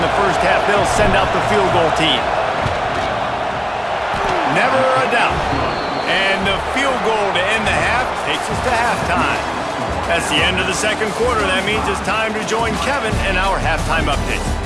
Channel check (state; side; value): identical; both; correlation 1.00